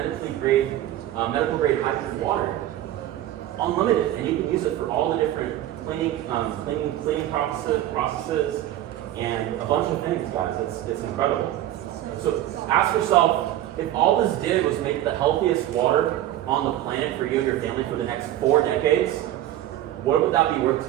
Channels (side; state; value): left; quieter; 13.3 dB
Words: grade hydrogen water, unlimited, and you can use it for all the different cleaning processes and a bunch of things, guys. It's incredible. So ask yourself, if all this did was make the healthiest water on the planet for you and your family for the next 4 decades, what would that be worth